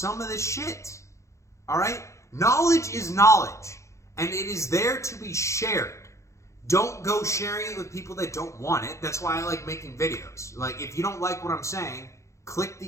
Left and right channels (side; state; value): right; late; 0.14 ms